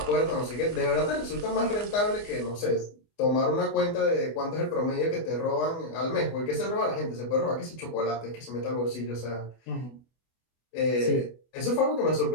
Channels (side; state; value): right; late; 24 ms